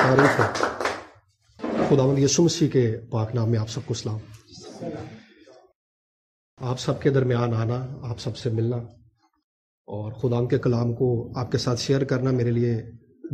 خداوند یسوع مسیح کے پاک نام میں آپ سب کو سلام. آپ سب کے درمیان آنا، آپ سب سے ملنا اور خدا کے کلام کو آپ کے ساتھ شیئر کرنا میرے لیے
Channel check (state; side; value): identical; both; correlation 1.00